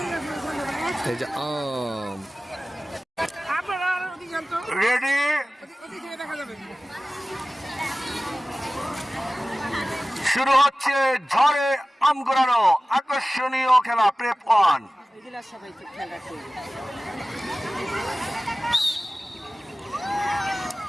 এই যে আম রেডি, শুরু হচ্ছে ঝড়ে আম কুড়ানো আকর্ষণীয় খেলা প্রেফ 1।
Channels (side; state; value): both; normal; correlation 0.96